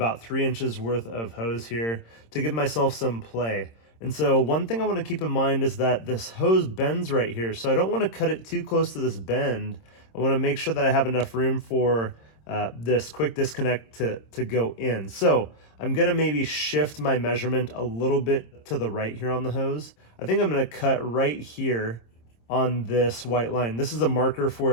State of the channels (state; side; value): late; right; 26 ms